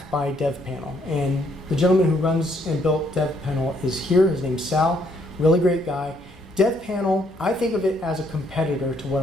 by DevPanel. And the gentleman who runs and built DevPanel is here. His name's Sal, really great guy. DevPanel, I think of it as a competitor to what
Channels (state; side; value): normal; both; correlation 0.69